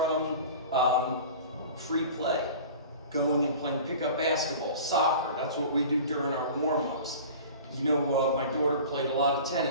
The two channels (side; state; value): both; inverted; correlation -0.39